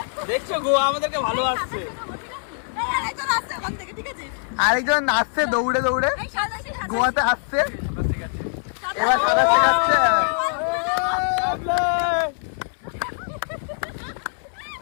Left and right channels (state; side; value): silent; right; 63 dB below the other